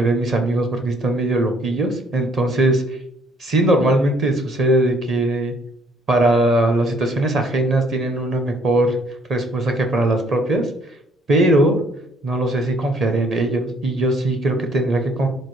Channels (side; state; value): both; normal; correlation 0.63